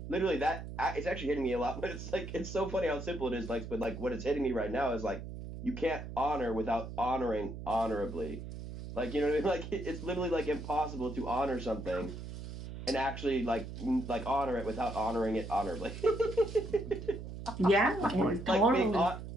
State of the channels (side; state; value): right; noise; hum, 9 dB below the sound